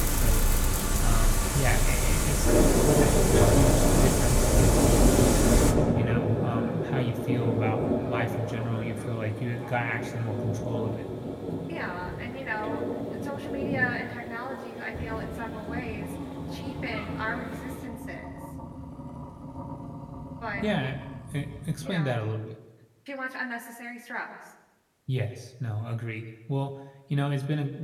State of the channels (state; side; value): identical; both; correlation 1.00